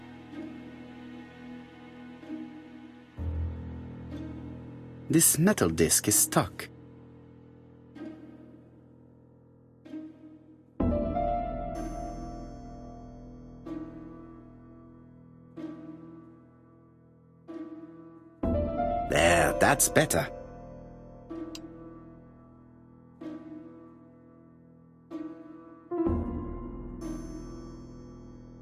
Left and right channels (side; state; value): both; identical; correlation 1.00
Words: This metal disc is stuck. There, that's better.